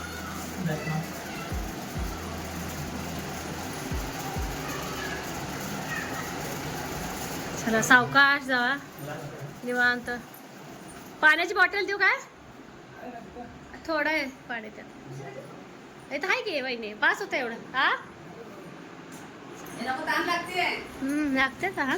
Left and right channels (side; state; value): both; identical; correlation 1.00